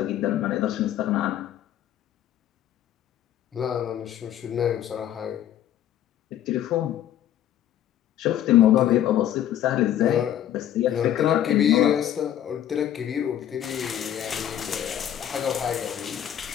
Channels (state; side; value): quieter; right; 11.2 dB